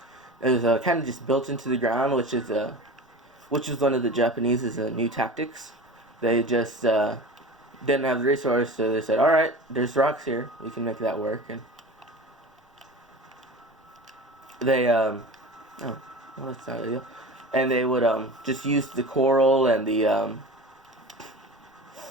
is kind of just built into the ground, which is one of the Japanese's new tactics. They just didn't have the resource, so they said, "All right, there's rocks here. We can make that work." And they oh, well, that's not ideal. And they would just use the coral and the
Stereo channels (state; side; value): normal; both; correlation 0.34